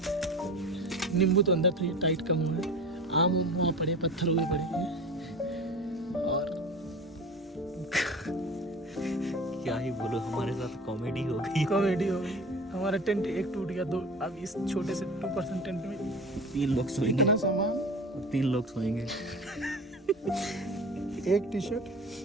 नींबू तो अंदर थोड़ी टाइट कम हुआ है, आम वहाँ पड़े, पत्थर हुए पड़े हैं। और क्या ही बोलो, हमारे साथ कॉमेडी हो गई। हमारा टेंट एक टूट गया, 2 अब इस छोटे से 2% टेंट में 3 लोग सोएंगे। इतना सामान, 3 लोग सोएंगे। एक T shirt,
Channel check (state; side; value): normal; both; correlation 0.35